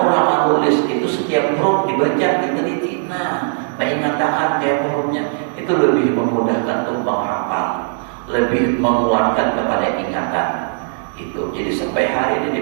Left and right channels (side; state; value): left; silent; 67 dB below the other